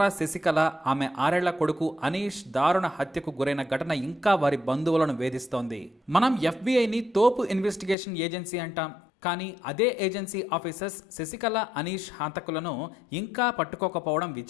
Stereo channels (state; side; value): drops out; right; at 8.0 s